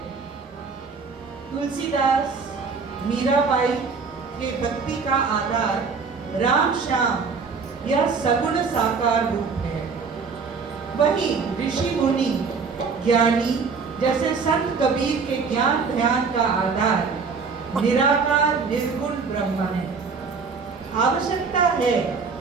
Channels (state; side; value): quieter; left; 5.1 dB